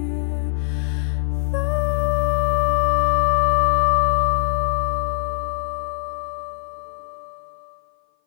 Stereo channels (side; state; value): right; silent; 56 dB below the other